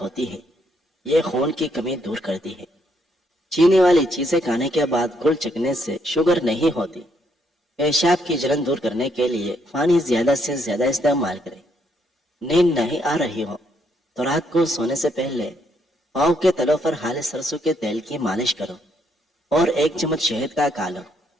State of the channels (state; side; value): normal; both; correlation 0.73